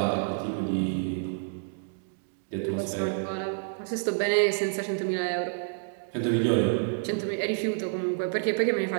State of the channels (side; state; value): left; silent; digital silence